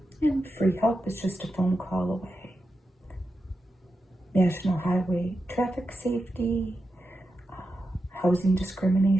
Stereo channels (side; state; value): both; normal; correlation 0.89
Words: And free help is just a phone call away. National Highway Traffic Safety, Housing